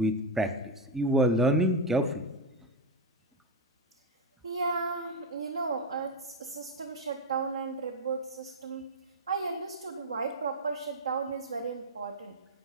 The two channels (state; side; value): normal; both; correlation 0.06